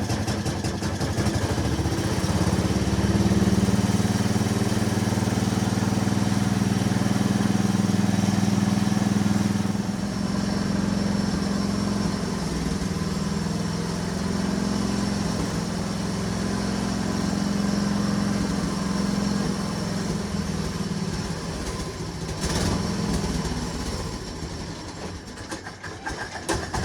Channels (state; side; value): identical; both; correlation 1.00